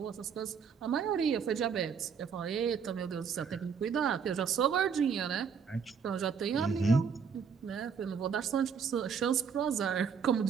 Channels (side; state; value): left; quieter; 6.5 dB